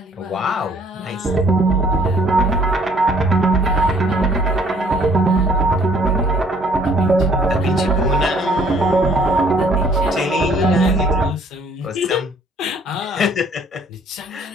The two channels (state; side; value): normal; both; correlation 0.60